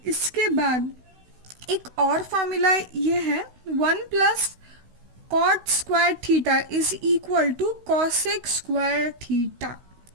इसके बाद एक और फार्मूला ये है 1 plus cot square theta is equal to cosec square theta.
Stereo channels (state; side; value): late; left; 16 ms